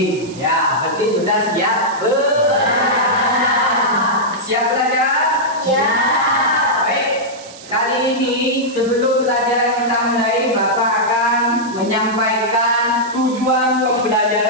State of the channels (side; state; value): right; noise; hiss, 18 dB below the sound